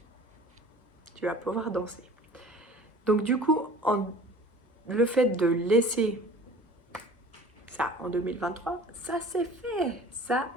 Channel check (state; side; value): normal; both; correlation 0.44